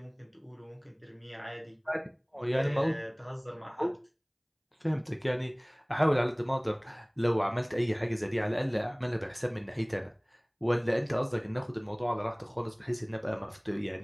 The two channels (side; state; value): both; identical; correlation 1.00